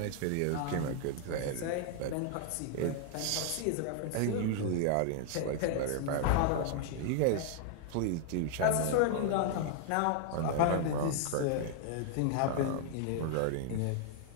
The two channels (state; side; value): different; both; correlation 0.00